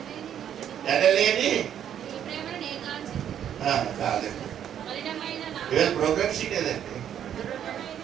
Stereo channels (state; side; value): quieter; left; 9.7 dB